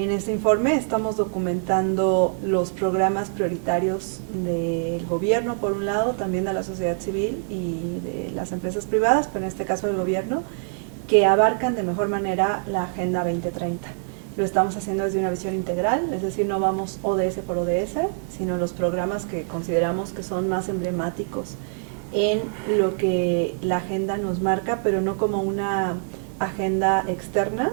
este informe estamos documentando los programas prioritarios del gobierno, por un lado, también de la sociedad civil y de las empresas privadas, pero en este caso del gobierno, que abarcan de mejor manera la Agenda 2030. Lo estamos haciendo desde una visión integral, es decir, no vamos ODS por ODS, sino los programas que consideramos que son más emblemáticos en lo que la agenda nos marca, pero no como una agenda externa,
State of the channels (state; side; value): silent; left; digital silence